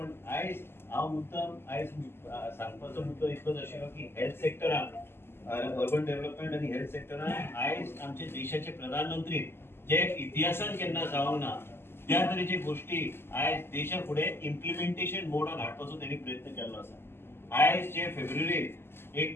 आज हांव मुद्दाम आज सांगपाचो मुद्दो इतलोच आशिल्लो की हेल्थ सेक्टरान, अर्बन डेव्हलपमेंट आणि हेल्थ सेक्टरान आज आमच्या देशाचे प्रधानमंत्री जे इतिहासान केन्ना जावंक ना त्या तरेचे गोष्टी आज देशा फुडें इम्प्लिमेंटेशन मोडान हाडपाचो त्यांनी प्रयत्न केल्लो आसा। आज जे फेब्रुवारीत 1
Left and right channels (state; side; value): late; right; 0.12 ms